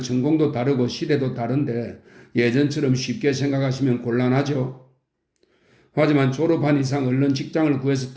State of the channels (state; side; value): identical; both; correlation 1.00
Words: 다르고 시대도 다른데 예전처럼 쉽게 생각하시면 곤란하죠. 하지만 졸업한 이상 얼른 직장을 구해서